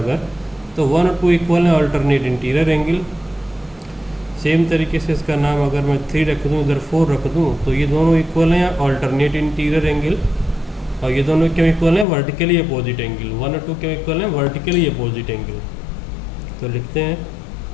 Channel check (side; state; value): right; drops out; at 12.1 s